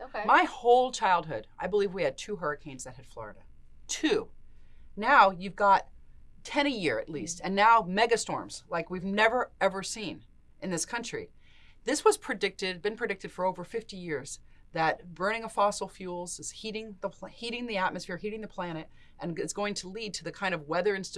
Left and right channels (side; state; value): both; identical; correlation 1.00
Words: Okay. My whole childhood, I believe we had 2 hurricanes that hit Florida. 2. Now you've got 10 a year at least, and now megastorms like we've never ever seen in this country. This was been predicted for over 50 years, that burning of fossil fuels is heating the atmosphere, heating the planet, and it's going to lead to the kind of weather